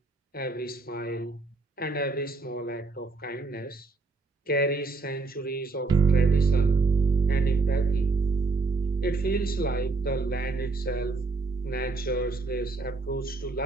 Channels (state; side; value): quieter; left; 3.8 dB